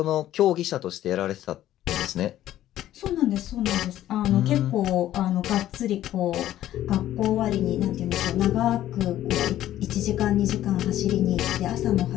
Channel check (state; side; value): quieter; right; 13.0 dB